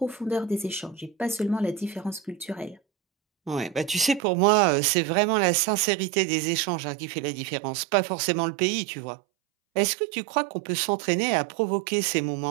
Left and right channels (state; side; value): drops out; left; at 4.2 s